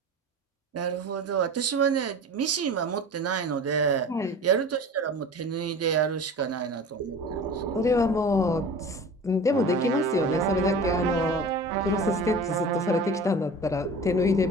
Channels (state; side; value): normal; both; correlation 0.37